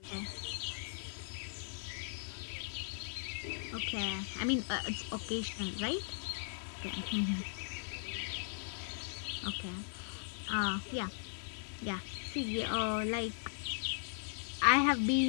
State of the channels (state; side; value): silent; right; 52 dB below the other